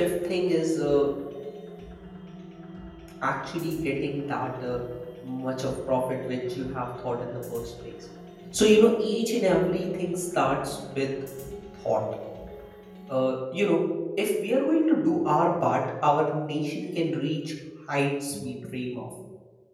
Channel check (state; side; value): identical; both; correlation 1.00